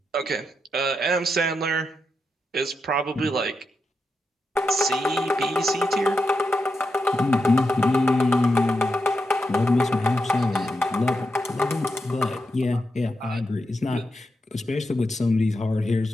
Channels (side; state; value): both; normal; correlation 0.86